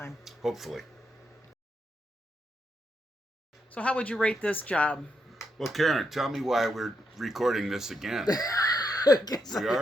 Hopefully. So how would you rate this job? Well, Karen, tell me why we're recording this again. We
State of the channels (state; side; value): normal; both; correlation 0.81